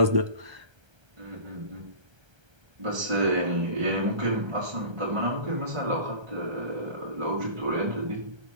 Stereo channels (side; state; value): left; late; 1.3 ms